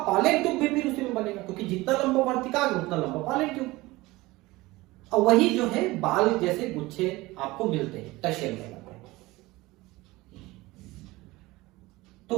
पालेट ट्यूब भी फिर उसी में बनेगा, क्योंकि जितना लंबा वर्तिकाग्र उतना लंबा पालेट ट्यूब। और वही जो है बाल जैसे गुच्छे आपको मिलते हैं, टशेल कहलाते हैं। तो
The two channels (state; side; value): quieter; left; 20.2 dB